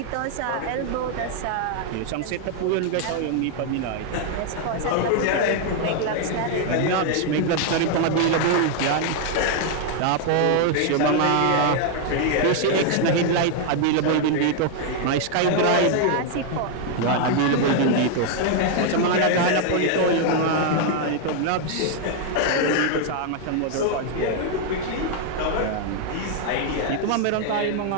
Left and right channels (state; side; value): different; both; correlation 0.00